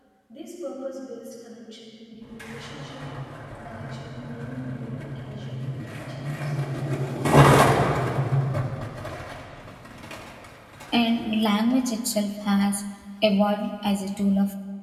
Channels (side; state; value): both; identical; correlation 1.00